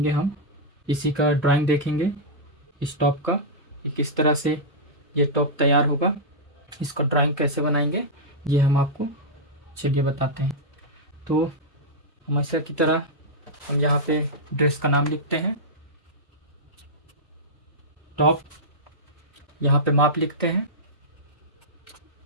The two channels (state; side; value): normal; both; correlation -0.09